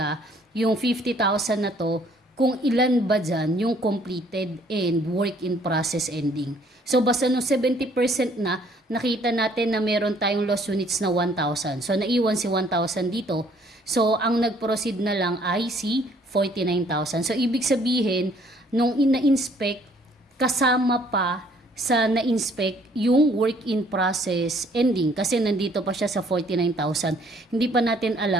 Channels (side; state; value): both; normal; correlation 0.61